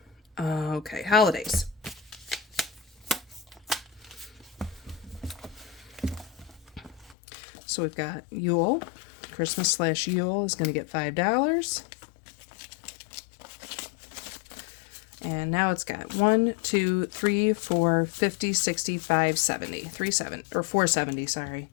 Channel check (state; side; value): drops out; right; at 7.2 s